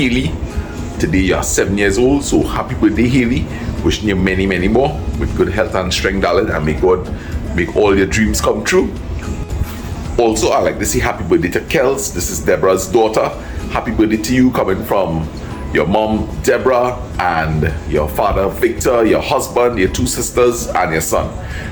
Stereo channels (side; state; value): both; identical; correlation 1.00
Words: Today you're 7 years old, so happy birthday Haley. Wishing you many more with good health and strength, darling, and may God make all your dreams come true. Also, I like to say happy birthday to Kels. This is Deborah's daughter. Happy birthday to you, coming from your mom Deborah and your father Victor, your husband, your two sisters, and your son.